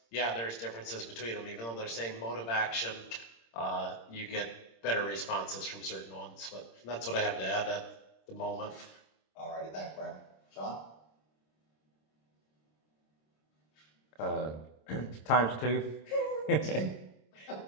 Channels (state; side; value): late; right; 26 ms